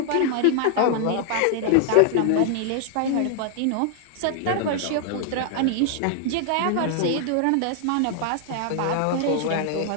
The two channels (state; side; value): different; both; correlation 0.00